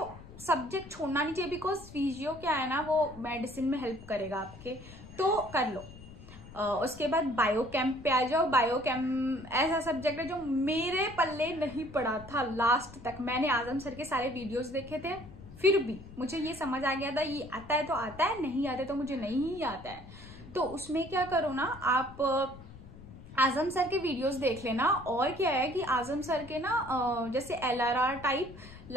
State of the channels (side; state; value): left; noise; rumble, 17 dB below the sound